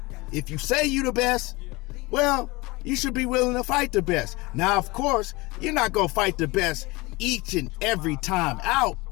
If you say you the best, well, you should be willing to fight the best. Now, of course, you're not going to fight the best each and every time out.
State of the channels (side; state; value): right; quieter; 23.5 dB